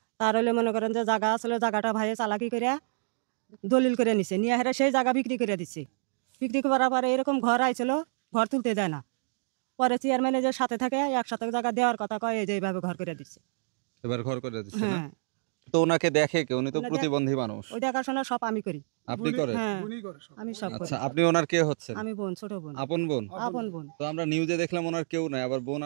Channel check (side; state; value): left; silent; digital silence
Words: তার হলে মনে করেন যে জায়গা আসলে জায়গাটা ভাইয়ে চালাকি করে দলিল করে নিছে, নিয়ে হেরে সেই জায়গা বিক্রি করে দিচ্ছে। বিক্রি করার পরে এরকম ঘর আইছিল, ঘর তুলতে দেয় না। পরে চেয়ারম্যানে যে সাথে থাকে একসাথে জায়গা দেওয়ার কথা কয়, এই যে এইভাবে ঘর করে দিচ্ছে। এবার ঘর করে দিচ্ছে না? হ্যাঁ। তো ওনাকে দেখে কে? উনি তো প্রতিবন্ধী মানুষ। ওই দেখাশোনা সব আমি করি। আপনি করেন? হ্যাঁ, আমি সব করি। আচ্ছা, আপনি ওনার কে হচ্ছেন? আমি বোন, ছোট বোন। আপন বোন? আপন বোন। তো আমরা নিউজে দেখলাম ওনার কেউ নাই, আবার বোন।